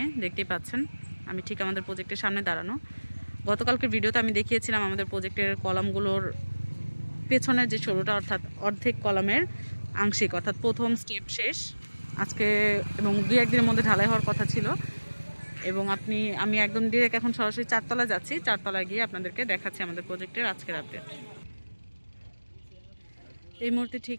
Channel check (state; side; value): inverted; both; correlation -1.00